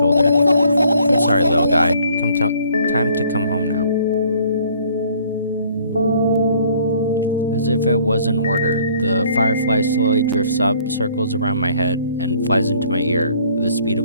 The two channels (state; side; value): inverted; both; correlation -0.60